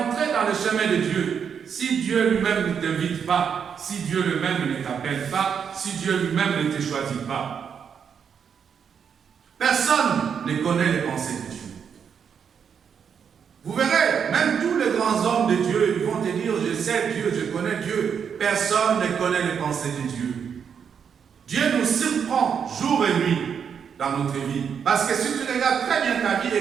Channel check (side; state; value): left; quieter; 7.2 dB